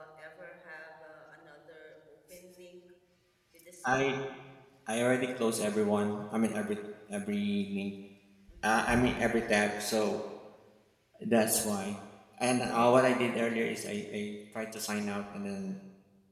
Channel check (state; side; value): identical; both; correlation 1.00